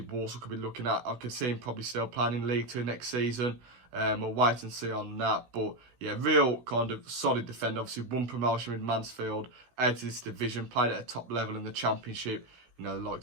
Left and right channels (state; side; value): late; left; 16 ms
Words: could be looking at. I could see him probably still playing in League Two next season. We'll wait and see on that. But yeah, real kind of solid defender. Obviously, won promotion with Mansfield out of this division. Played at a top level in the Championship. The